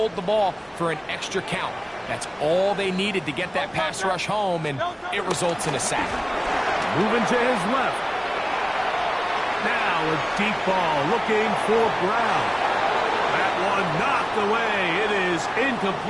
the ball for an extra count. That's all they needed to get that pass rush home, and it results in a sack. Moving to his left. Now a deep ball looking for Brown. That one knocked away. It is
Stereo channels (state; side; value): identical; both; correlation 1.00